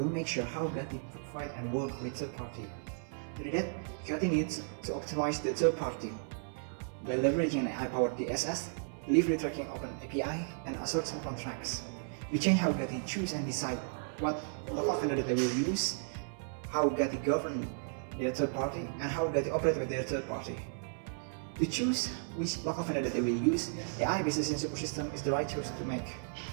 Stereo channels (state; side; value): silent; left; 55 dB below the other